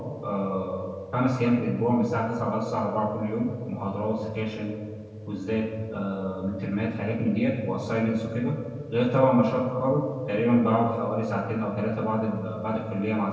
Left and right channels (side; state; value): both; identical; correlation 1.00